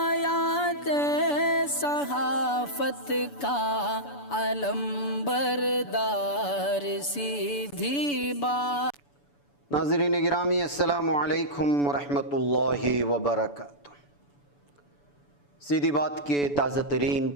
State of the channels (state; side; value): late; right; 7.0 ms